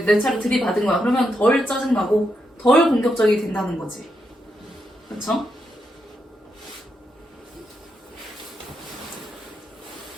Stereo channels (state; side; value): normal; both; correlation 0.83